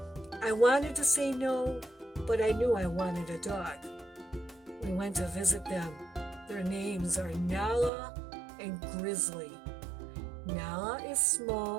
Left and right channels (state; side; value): drops out; left; at 7.9 s